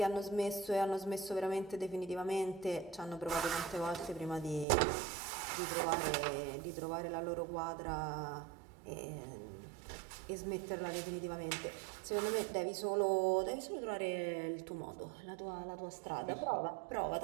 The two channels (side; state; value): left; drops out; at 4.7 s